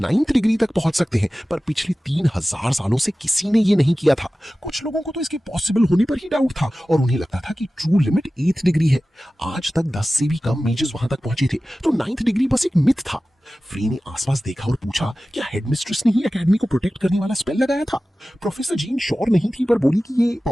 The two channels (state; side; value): normal; both; correlation 0.96